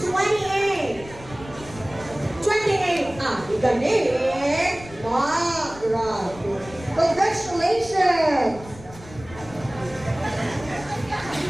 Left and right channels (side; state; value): left; noise; rumble, 18 dB below the sound